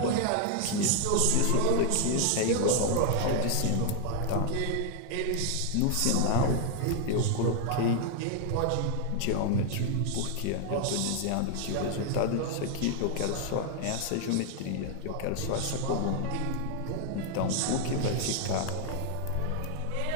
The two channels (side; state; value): both; different; correlation 0.00